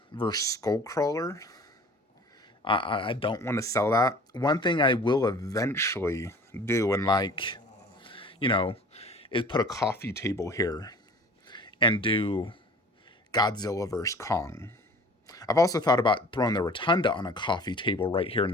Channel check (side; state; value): both; normal; correlation 0.46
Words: versus Skullcrawler. I don't want to sell that. One thing I will eventually do, and like, you know, is put a coffee table here and do Godzilla vs. Kong. I've also thought about throwing the rotunda on a coffee table right here in